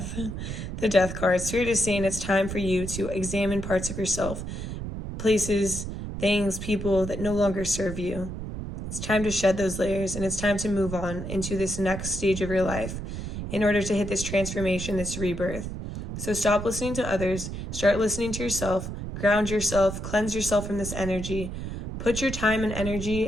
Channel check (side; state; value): right; noise; rumble, 6 dB below the sound